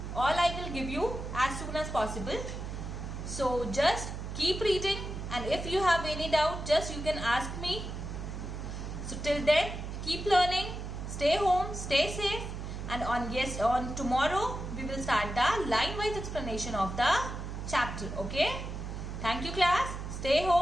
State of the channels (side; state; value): right; noise; hum, 7 dB below the sound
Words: All I will give you as soon as possible. So just keep reading, and if you have any doubt, just you can ask me. So till then, keep learning, stay home, stay safe, and on tomorrow we will start the line-wise explanation of the chapter. Okay? Thank you, class. Stay